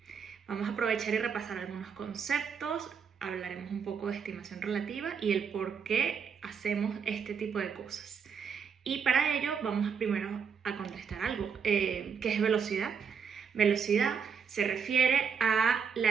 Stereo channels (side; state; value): left; quieter; 6.5 dB